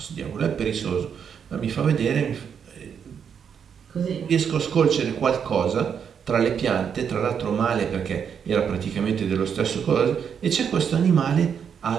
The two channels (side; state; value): left; quieter; 7.5 dB